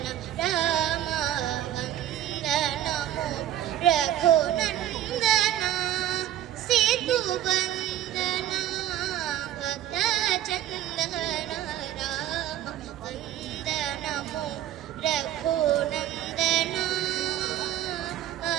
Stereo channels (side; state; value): left; quieter; 12.1 dB